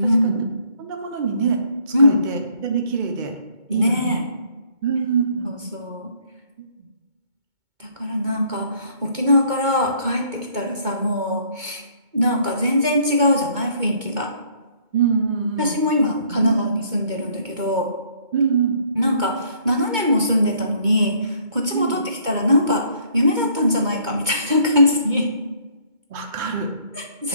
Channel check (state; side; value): late; left; 2.2 ms